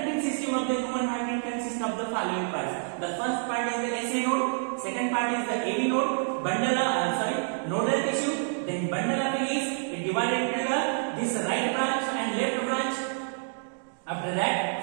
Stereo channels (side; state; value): left; silent; digital silence